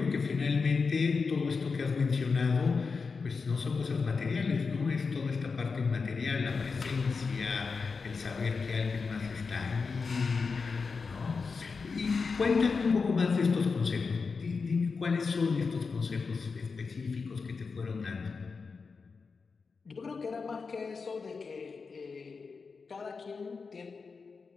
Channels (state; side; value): quieter; right; 4.8 dB